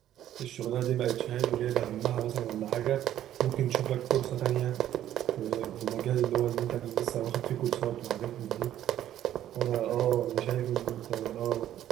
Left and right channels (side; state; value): left; quieter; 11.9 dB